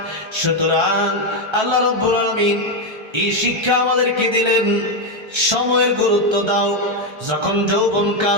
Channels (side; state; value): left; late; 1.3 ms